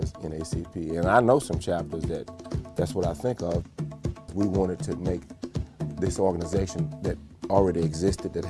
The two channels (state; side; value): identical; both; correlation 1.00